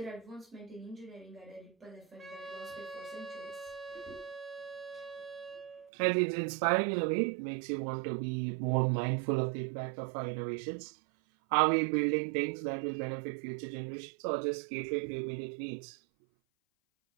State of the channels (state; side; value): drops out; left; at 5.9 s